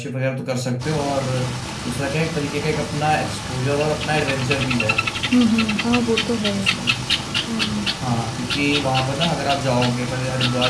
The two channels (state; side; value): identical; both; correlation 1.00